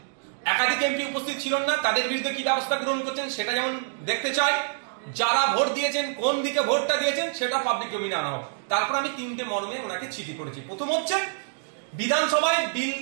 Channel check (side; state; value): left; silent; digital silence